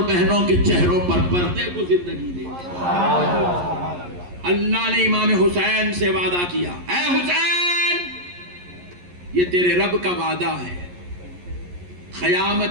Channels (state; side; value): late; left; 11 ms